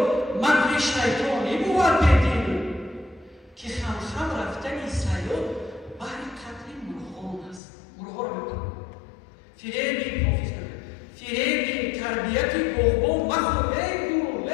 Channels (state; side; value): drops out; right; at 7.6 s